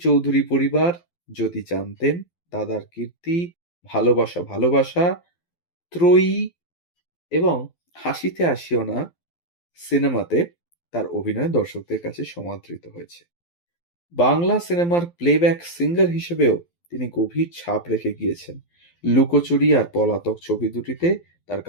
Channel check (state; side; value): late; right; 12 ms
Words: পরিবার, যদি জানতেন, দাদার কীর্তি, ভালোবাসা ভালোবাসা, ত্রয়ী এবং হাসিতে আসিও না সিনেমাতে তার অভিনয় দর্শকদের কাছে সমাদৃত হয়েছে। বাংলা সিনেমার প্লেব্যাক সিঙ্গার হিসেবেও তিনি গভীর ছাপ রেখে গিয়েছেন। লুকোচুরি আর পলাতক ছবি দুটিতে তার